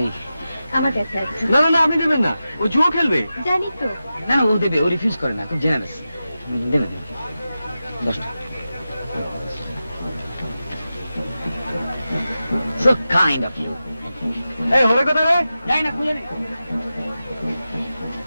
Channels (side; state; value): both; inverted; correlation -0.92